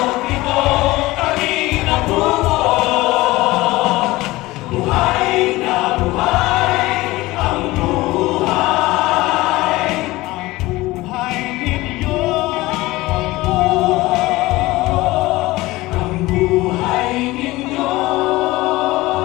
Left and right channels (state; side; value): quieter; right; 19.4 dB